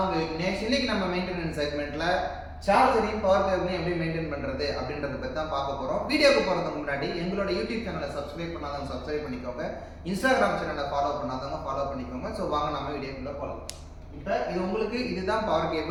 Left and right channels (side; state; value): both; identical; correlation 1.00